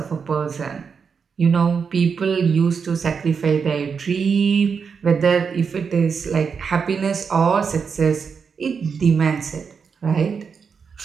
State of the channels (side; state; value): left; quieter; 6.0 dB